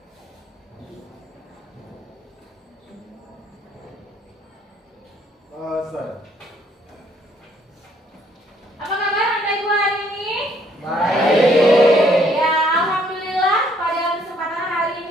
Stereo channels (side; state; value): both; normal; correlation 0.66